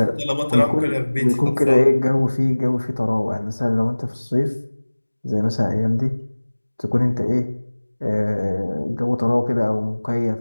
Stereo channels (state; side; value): inverted; both; correlation -1.00